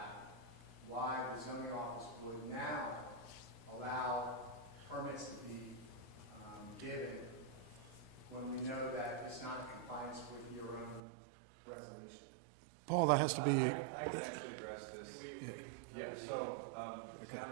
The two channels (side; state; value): left; drops out; at 11.0 s